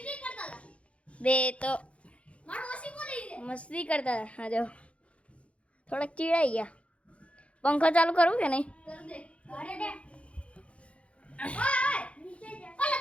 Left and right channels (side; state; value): right; late; 0.062 ms